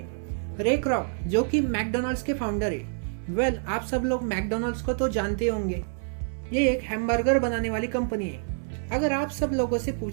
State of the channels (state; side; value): silent; left; 58 dB below the other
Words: रे क्रॉक, जो कि मैकडोनल्ड्स के फाउंडर है, वेल आप सब लोग मैकडोनल्ड्स को तो जानते होंगे। ये एक हैमबर्गर बनाने वाली कंपनी है। अगर आप सब लोगों से